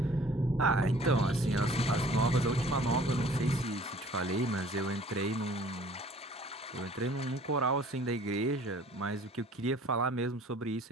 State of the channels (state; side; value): normal; both; correlation 0.52